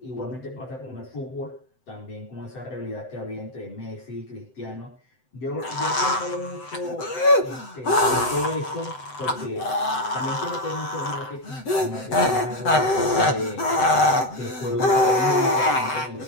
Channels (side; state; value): right; late; 7.8 ms